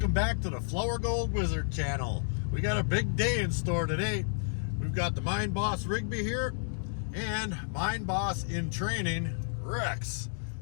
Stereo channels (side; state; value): right; silent; digital silence